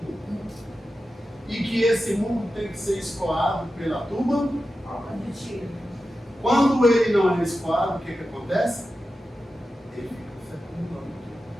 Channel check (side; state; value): both; normal; correlation 0.92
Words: E que esse muco tem que ser escoado pela tuba. Quando ele não é escoado, o que acontece? Ele fica se acumulando.